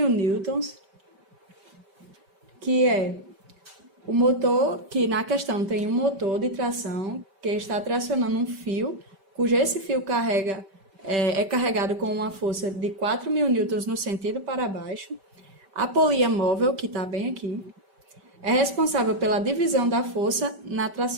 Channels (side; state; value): left; late; 5.2 ms